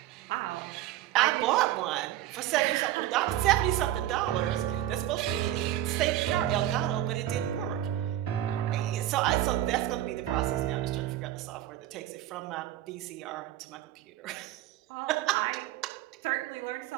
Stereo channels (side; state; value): left; quieter; 13.3 dB